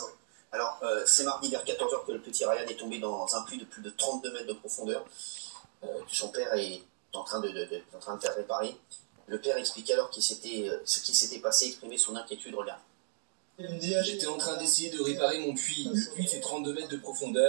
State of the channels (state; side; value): silent; left; digital silence